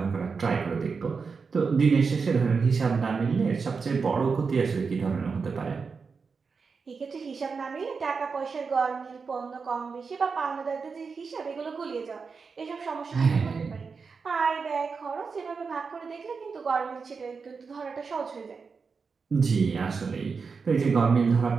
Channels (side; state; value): left; quieter; 5.1 dB